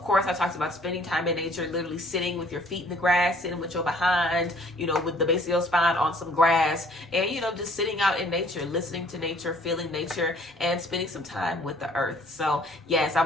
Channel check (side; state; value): both; normal; correlation 0.58